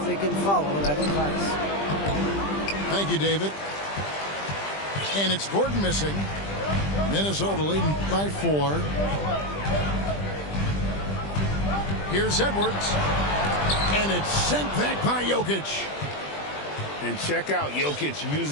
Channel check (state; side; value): late; right; 20 ms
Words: they can follow that advice. Thank you, David. And it's Gordon missing. Minnesota leading by 4. Here's Edwards. And it's sent back by Jokic. And check out Jokic